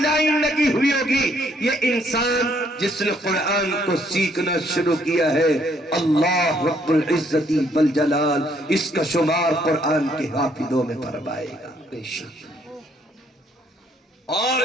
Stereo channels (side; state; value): both; normal; correlation 0.68